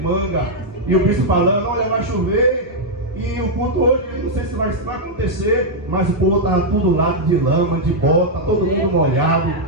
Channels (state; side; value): normal; both; correlation -0.03